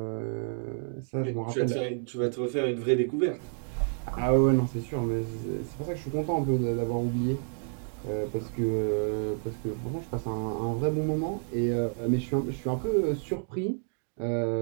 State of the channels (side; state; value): left; silent; 58 dB below the other